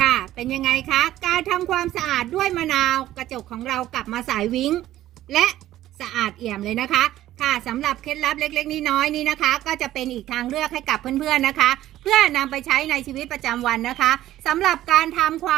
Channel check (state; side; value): quieter; left; 13.9 dB